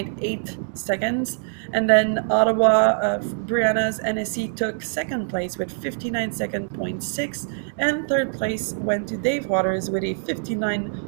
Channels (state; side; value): silent; left; digital silence